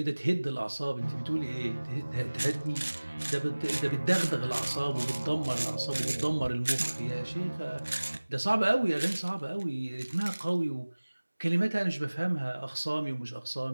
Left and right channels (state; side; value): inverted; both; correlation -1.00